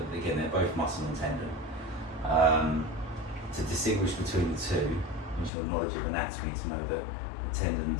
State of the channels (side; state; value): right; drops out; at 5.5 s